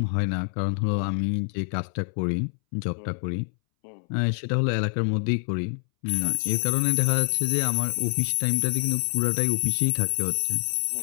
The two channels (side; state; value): right; silent; 61 dB below the other